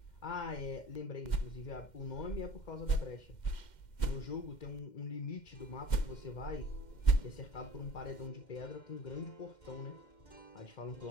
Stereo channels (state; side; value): late; right; 2.1 ms